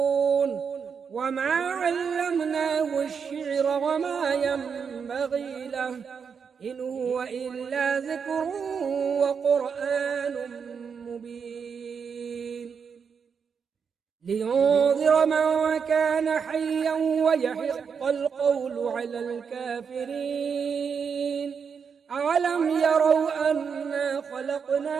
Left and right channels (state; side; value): quieter; left; 6.4 dB